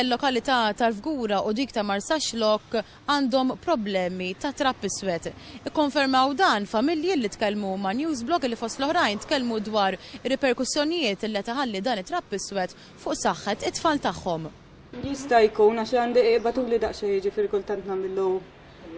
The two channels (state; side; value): identical; both; correlation 1.00